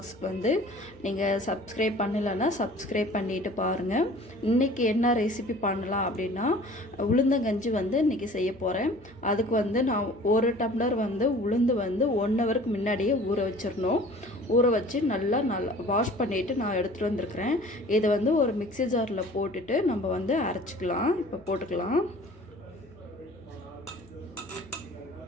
வந்து நீங்கள் சப்ஸ்கிரைப் பண்ணலைன்னா சப்ஸ்கிரைப் பண்ணிவிட்டு பாருங்கள். இன்றைக்கி என்ன ரெசிபி பண்ணலாம் அப்படின்னா, உளுந்தங்கஞ்சி வந்து இன்றைக்கி செய்ய போகிறேன். அதுக்கு வந்து நான் ஒரு டம்ளர் வந்து உளுந்து வந்து 1 ஹவருக்கு முன்னாடியே ஊற வச்சிடணும். ஊற வச்சு நல்லா வாஷ் பண்ணிவிட்டு நான் எடுத்துகிட்டு வந்திருக்கிறேன். இதை வந்து ஒரு மிக்ஸி ஜாரில் போட்டுட்டு நம்ம வந்து அரைச்சிக்கலாம். இப்போ போட்டுக்கலாம்.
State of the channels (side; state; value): left; noise; hum, 26 dB below the sound